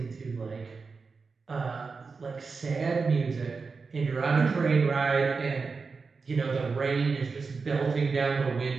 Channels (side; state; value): left; quieter; 4.7 dB